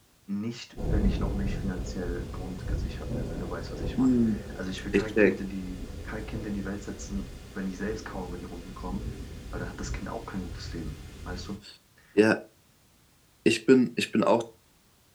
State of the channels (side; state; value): both; identical; correlation 1.00